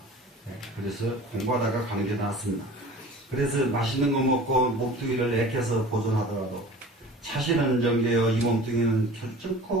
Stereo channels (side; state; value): both; normal; correlation 0.41